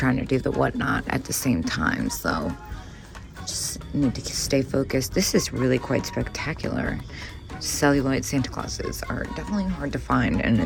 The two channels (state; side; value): identical; both; correlation 1.00